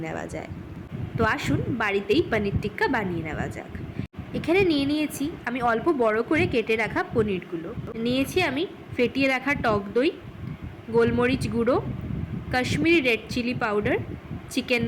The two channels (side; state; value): both; identical; correlation 1.00